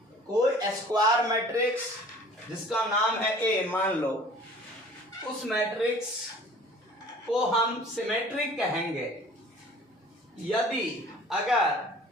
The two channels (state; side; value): normal; both; correlation 0.49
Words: कोई square matrix जिसका नाम है ए मान लो, उस matrix को हम symmetric कहेंगे यदि